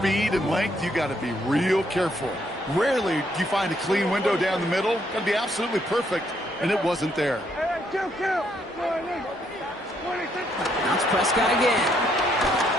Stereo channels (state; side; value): normal; both; correlation 0.72